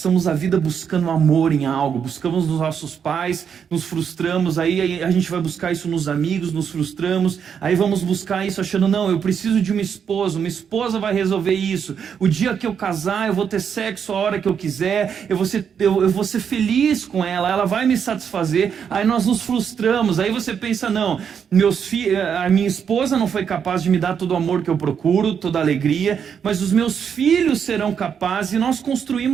a vida buscando amor em algo, buscamos nos nossos pais, nos frustramos, aí a gente vai buscar isso nos amigos, nos frustramos, aí vamos buscar isso achando: não, eu preciso de uma esposa vai resolver isso, o dia que eu casar eu vou ter sexo a hora que eu quiser, eu vou ser feliz com ela vai me satisfazer, aí nós nos frustramos, aí você pensa: não, a minha esposa não foi capaz de me dar todo o amor que eu procuro, toda a alegria, mas os meus filhos serão capazes, e nós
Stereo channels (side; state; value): left; quieter; 7.4 dB